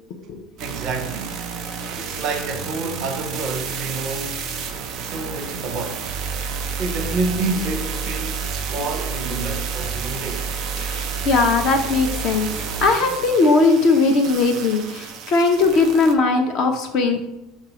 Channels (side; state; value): both; normal; correlation 0.43